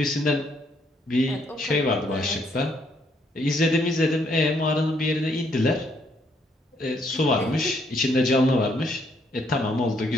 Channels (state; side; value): normal; both; correlation 0.70